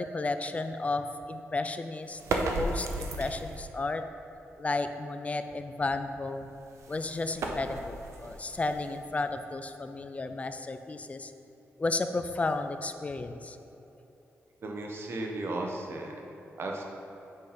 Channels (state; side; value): normal; both; correlation 0.75